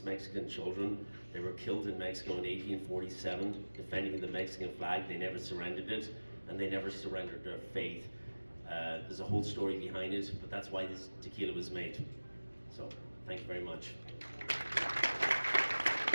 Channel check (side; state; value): both; inverted; correlation -1.00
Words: Mexican children. They were killed in Mexico in 1847, defending the Mexican flag. They never surrendered it, and they never surrendered their faith. There's a whole story behind it, but that's why this tequila was made. So, thank you very much.